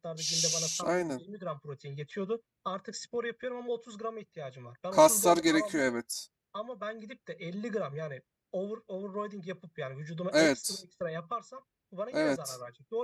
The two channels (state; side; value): identical; both; correlation 1.00